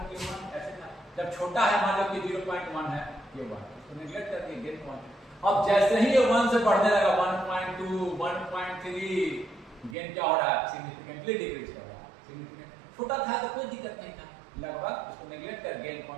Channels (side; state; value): left; drops out; at 10.0 s